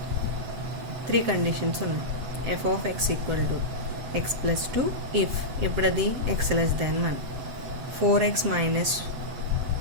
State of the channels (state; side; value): late; left; 8.0 ms